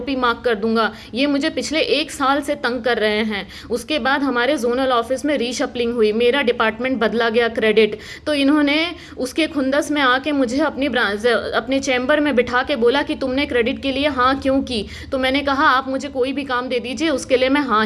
मार्क कर दूंगा। ये मुझे पिछले 1 साल से तंग कर रहे हैं। उसके बाद हमारे जोनल ऑफिस में रीशफलिंग हुई, मेरा डिपार्टमेंट बदला गया क्रेडिट, तो इन्होंने उसके खुंदस में आके मुझे अपने चैम्बर में बिठा के बोला कि तुमने क्रेडिट के लिए हाँ क्यों की। तो मैंने कहा आप मुझे कोई भी काम दे दीजिए, उसके लिए मैं हाँ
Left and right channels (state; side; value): identical; both; correlation 1.00